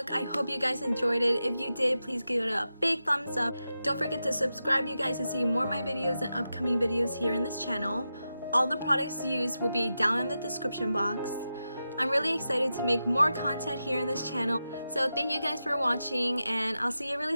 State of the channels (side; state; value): both; inverted; correlation -0.90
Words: I hope you guys enjoyed it. If you did, please give it a big thumbs up. Don't forget to subscribe, you guys, to see more of my videos and upcoming videos here in this channel. All the products used will be down in the description box. I'm really excited to make more content here in this channel. So thank you guys for watching, and I'll see you really